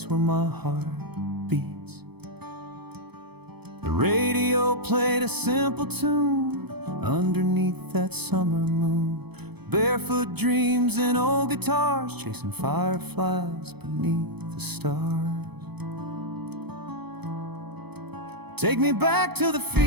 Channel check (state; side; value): late; left; 0.98 ms